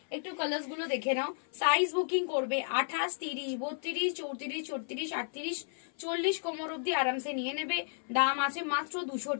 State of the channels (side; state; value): right; silent; 56 dB below the other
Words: একটু কালার্স গুলো দেখে নাও। সাইজ বুকিং করবে 28, 30, 32, 34, 36, 38, 40 কোমর অব্দি আরামসে নিয়ে নেবে। দাম আছে মাত্র 200